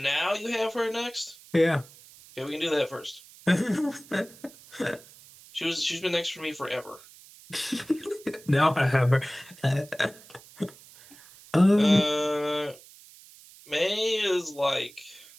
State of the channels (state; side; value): noise; right; hiss, 22 dB below the sound